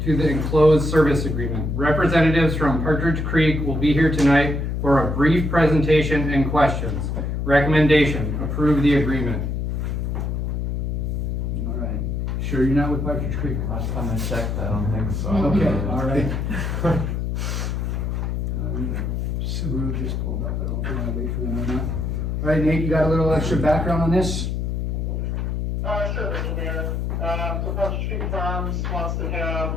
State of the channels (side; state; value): left; noise; hum, 1 dB below the sound